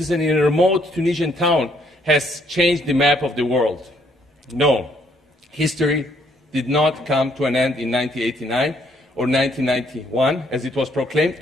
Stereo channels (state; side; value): normal; both; correlation 0.68